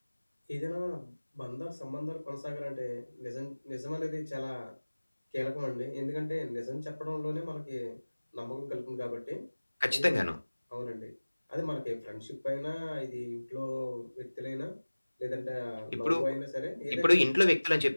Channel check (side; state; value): both; inverted; correlation -1.00